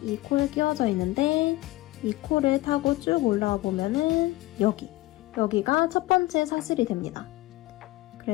이 코에 끼워져 있는데 이 코를 타고 쭉 올라와 보면은 여기가 첫 번째 사슬이 됩니다.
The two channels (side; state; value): right; quieter; 18.7 dB